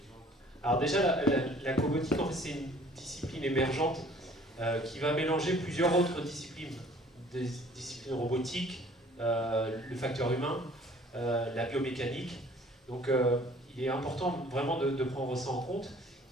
? Alors déjà, la cobotique, en fait, c'est une discipline émergente qui va mélanger plusieurs autres disciplines. Des disciplines robotiques, le facteur humain, la biomécanique. Donc il est important vraiment de prendre ça en compte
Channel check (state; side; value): normal; both; correlation 0.54